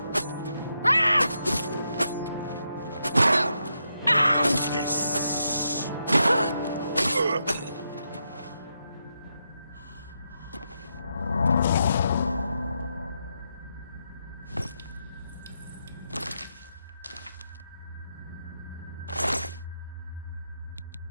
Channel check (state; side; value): inverted; both; correlation -0.83